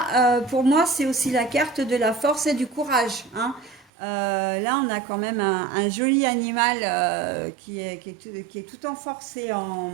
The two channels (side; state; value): left; drops out; at 3.9 s